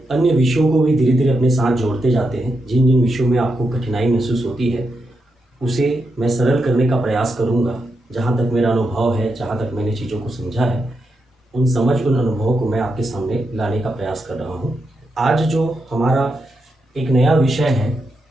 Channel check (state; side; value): normal; both; correlation 0.85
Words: अन्य विषयों को भी धीरे धीरे अपने साथ जोड़ते जाते हैं। जिन जिन विषयों में आपको कठिनाई महसूस होती है उसे मैं सरल करने का प्रयास करूँगा। जहाँ तक मेरा अनुभव है, जहाँ तक मैंने चीज़ों को समझा है, उन अनुभवों को मैं आपके सामने लाने का प्रयास कर रहा हूँ। आज जो हमारा एक नया विषय है